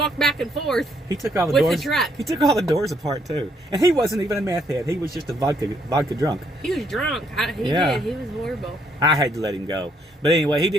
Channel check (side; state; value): both; normal; correlation 0.70